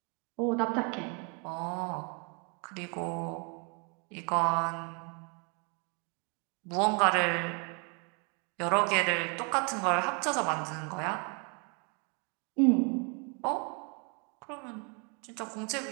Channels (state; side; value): quieter; left; 35.7 dB